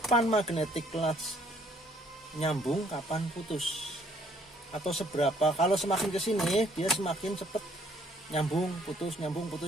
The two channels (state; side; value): normal; both; correlation 0.64